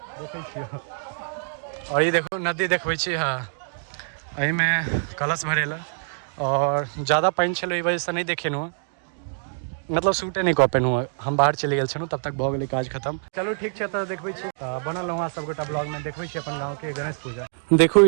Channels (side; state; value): left; silent; digital silence